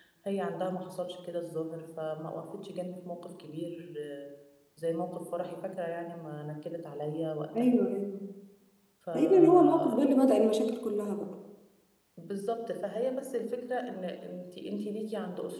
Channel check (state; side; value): identical; both; correlation 1.00